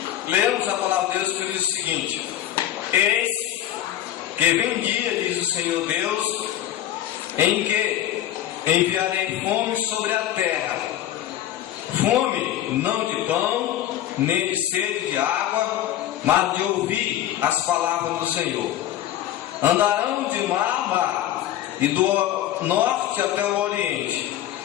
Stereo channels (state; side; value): quieter; right; 12.3 dB